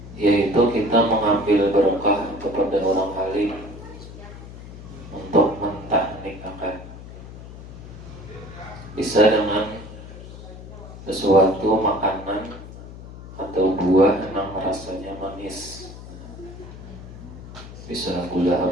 yaitu kita mengambil berkah kepada orang alim untuk mentahnikkan. Bisa dengan sesuatu makanan atau buah yang rasanya manis. Bisa gula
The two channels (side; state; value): left; noise; hum, 14 dB below the sound